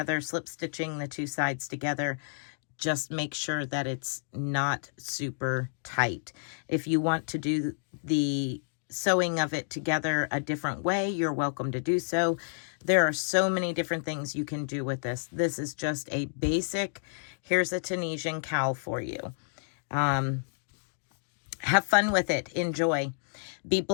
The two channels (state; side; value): silent; right; digital silence